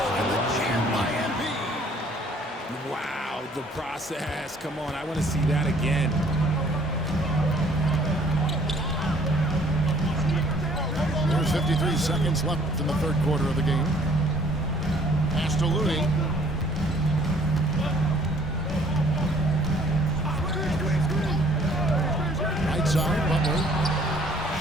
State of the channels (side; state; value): both; normal; correlation 0.59